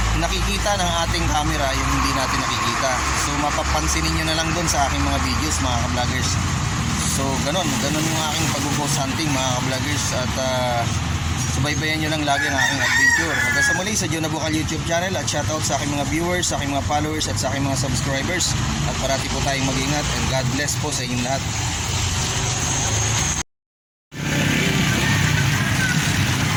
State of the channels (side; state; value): both; identical; correlation 1.00